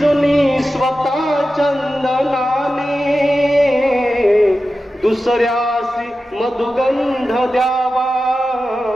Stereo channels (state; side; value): normal; both; correlation 0.93